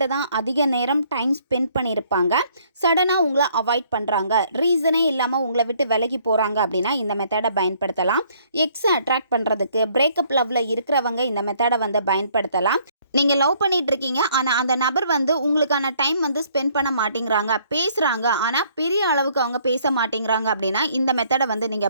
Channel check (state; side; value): inverted; both; correlation -0.63